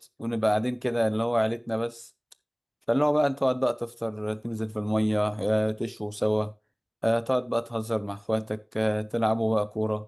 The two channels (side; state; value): both; identical; correlation 1.00